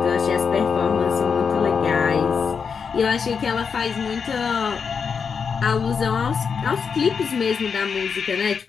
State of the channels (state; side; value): quieter; right; 6.1 dB